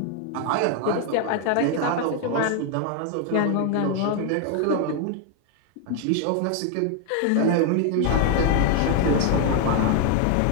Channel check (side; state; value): both; different; correlation 0.01